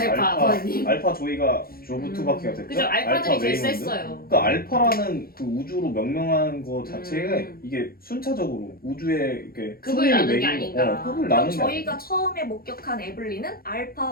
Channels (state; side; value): late; right; 0.43 ms